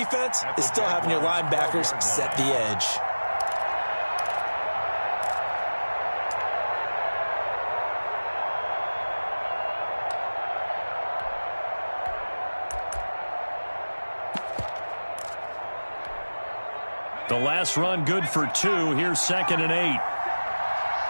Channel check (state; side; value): inverted; both; correlation -1.00